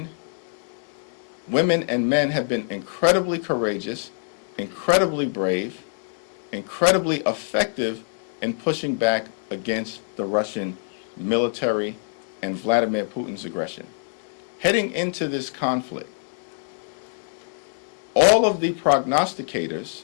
women and men have been incredibly courageous, incredibly brave, incredibly effective in pushing back against the Russian military and Vladimir Putin's aggression. Heading into this conflict, all of the prognosticators,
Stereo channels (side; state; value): right; silent; 60 dB below the other